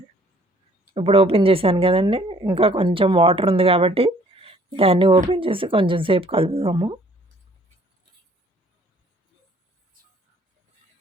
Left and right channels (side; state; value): both; normal; correlation 0.59